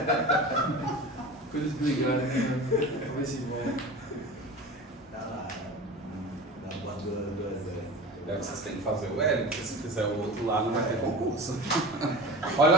Coisas brigarem, né? Vai se embora. Tá lá, na bandura do exército. É que vocês têm que fazer o L, porque se fizer o outro lá não vai ter concurso.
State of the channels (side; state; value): both; normal; correlation 0.33